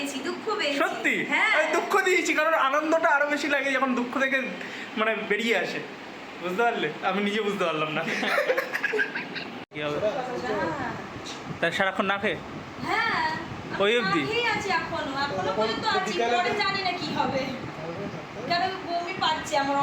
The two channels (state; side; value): identical; both; correlation 1.00